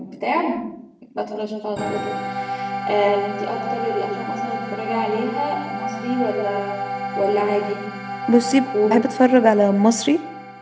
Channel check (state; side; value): identical; both; correlation 1.00